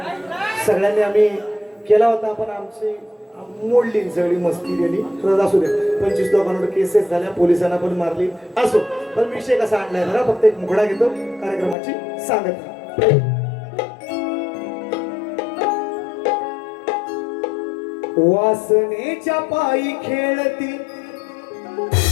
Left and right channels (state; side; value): drops out; right; at 11.8 s